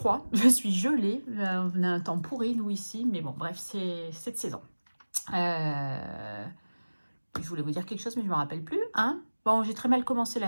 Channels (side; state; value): both; inverted; correlation -1.00